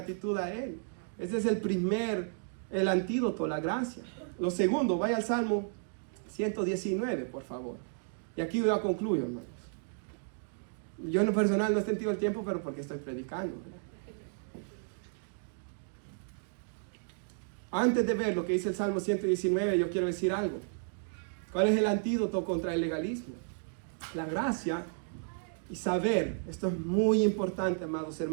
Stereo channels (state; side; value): silent; left; digital silence